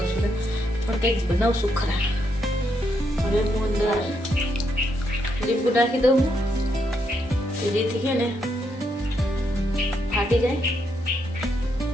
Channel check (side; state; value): both; normal; correlation 0.78